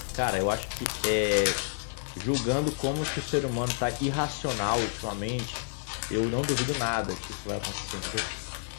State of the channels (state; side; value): silent; right; 58 dB below the other